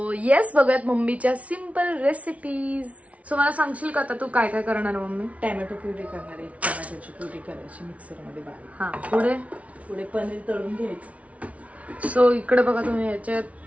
येस, बघूयात मम्मीच्या सिंपल रेसिपीज. सो मला सांगशील का आता तू काय काय करणार मम्मी? टॅमॅटो प्युरी करणार आहे, टॅमॅटोची प्युरी करायची मिक्सर मध्ये बारीक. हा, पुढे पुढे पनीर तळून घ्यायचं. सो इकडे बघा तुम्ही, याच्यात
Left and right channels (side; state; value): left; late; 0.066 ms